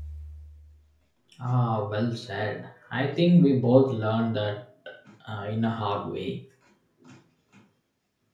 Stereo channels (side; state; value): both; identical; correlation 1.00